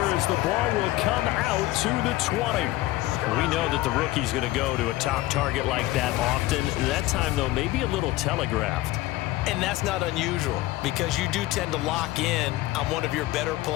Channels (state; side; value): quieter; right; 17.3 dB